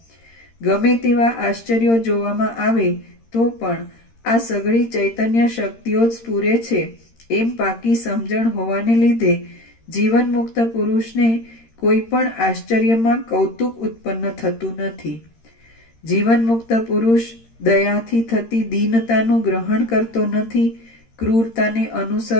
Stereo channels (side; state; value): right; late; 13 ms